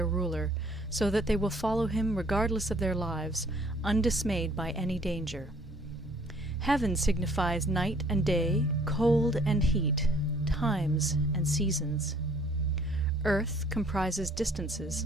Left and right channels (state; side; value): normal; both; correlation 0.59